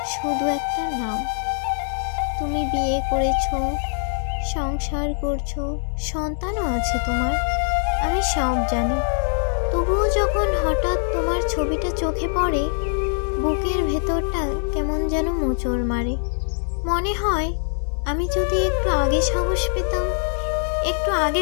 শুধু একটা নাম। তুমি বিয়ে করেছো, সংসার করছো, সন্তানও আছে তোমার, আমি সব জানি। তবুও যখন হঠাৎ তোমার ছবিটা চোখে পড়ে, বুকের ভেতরটা কেমন যেন মোচড় মারে। মনে হয় আমি যদি একটু আগে সাহস পেতাম, একটু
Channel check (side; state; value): right; silent; digital silence